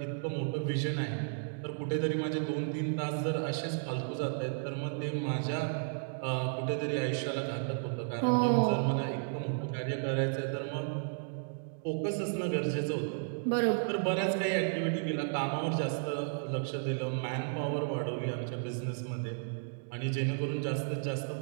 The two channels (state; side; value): silent; left; digital silence